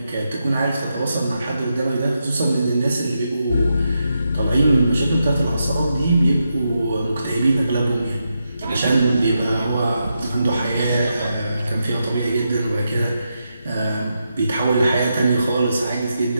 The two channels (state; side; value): inverted; both; correlation -0.85